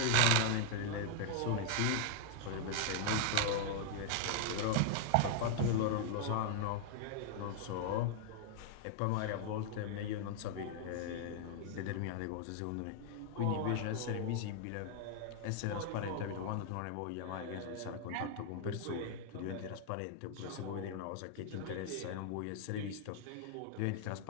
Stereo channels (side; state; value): both; different; correlation -0.01